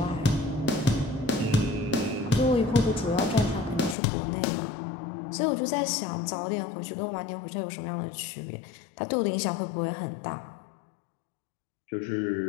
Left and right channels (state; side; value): drops out; right; at 4.0 s